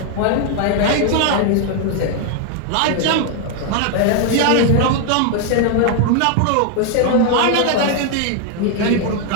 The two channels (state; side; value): different; both; correlation 0.01